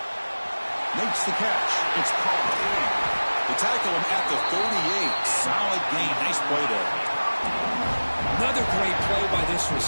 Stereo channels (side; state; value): both; inverted; correlation -1.00